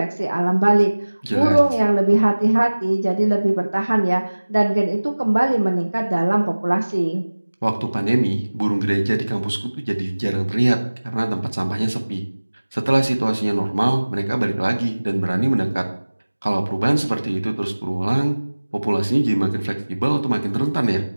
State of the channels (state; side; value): inverted; both; correlation -1.00